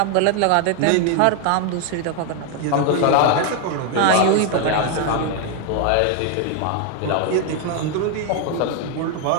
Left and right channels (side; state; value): both; different; correlation 0.01